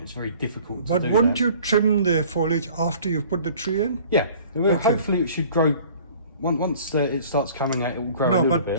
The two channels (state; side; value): inverted; both; correlation -0.50